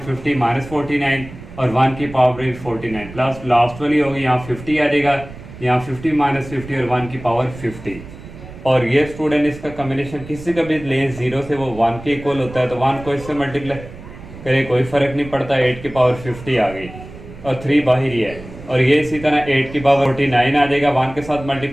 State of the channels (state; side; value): noise; right; rumble, 15 dB below the sound